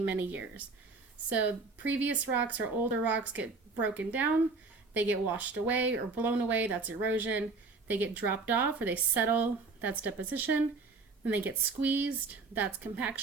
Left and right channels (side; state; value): left; quieter; 4.0 dB